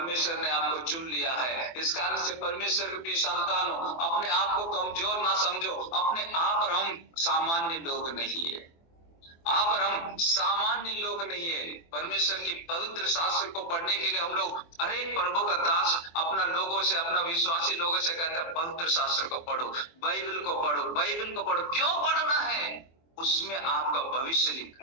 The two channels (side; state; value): right; late; 24 ms